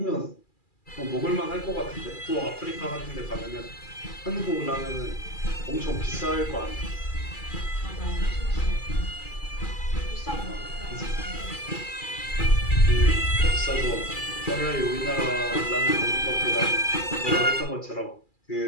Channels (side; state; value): right; late; 2.4 ms